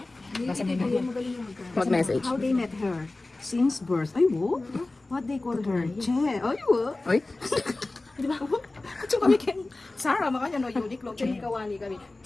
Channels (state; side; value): quieter; right; 3.1 dB